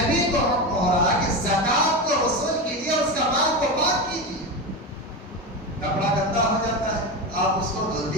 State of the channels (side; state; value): both; normal; correlation 0.19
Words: کو حکم ہو رہا کہ زکات کو وصول کیجیے اور اس کا مال کو پاک کیجیے. کپڑا گندا ہو جاتا ہے، آپ اس کو دھل